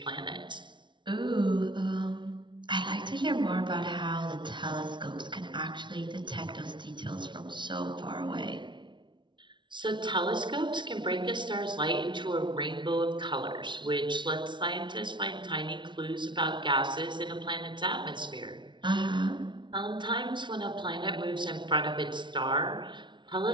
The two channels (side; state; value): left; late; 0.23 ms